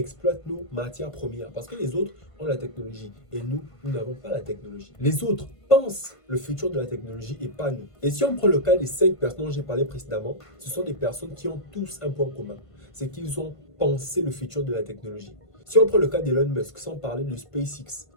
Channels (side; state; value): right; late; 1.5 ms